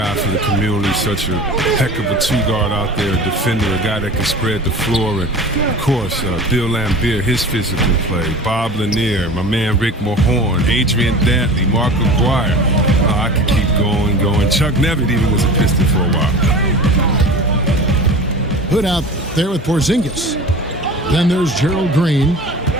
for the community, such a heck of a two-guard out there, a defender, a guy that can spread the floor. And, of course, Bill Laimbeer, his physical play, Bob Lanier, my man Rick Mahorn, Adrian Dantley, Mark McGuire. I could keep going. Chuck Nevitt even was a Piston for a while. Hood out there with Porzingis. Then there's Gerald Green.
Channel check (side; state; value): both; normal; correlation 0.37